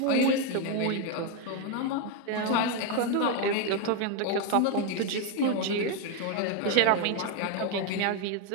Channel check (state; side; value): different; both; correlation 0.02